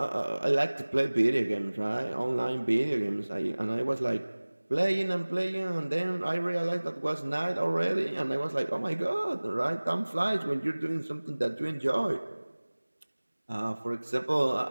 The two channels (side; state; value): both; inverted; correlation -1.00